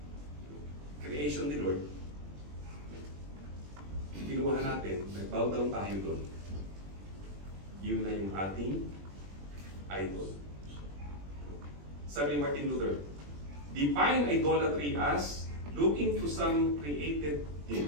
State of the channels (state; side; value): late; left; 21 ms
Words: Creation ni Lord, kinuha natin, nag-bow down tayo doon. Yun na yung ating idol. Sabi ni Martin Luther, define idolatry as looking to some created